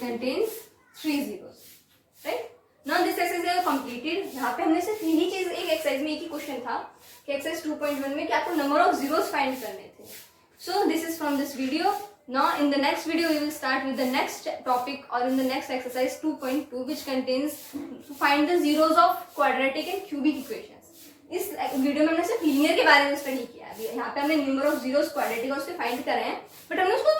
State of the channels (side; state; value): both; identical; correlation 1.00